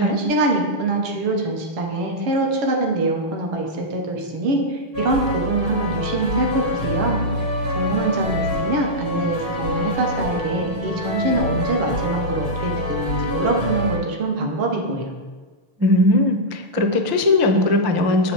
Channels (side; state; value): left; late; 6.5 ms